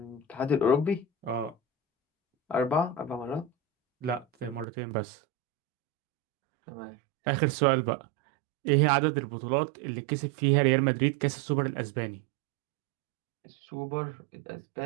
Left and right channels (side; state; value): left; drops out; at 4.7 s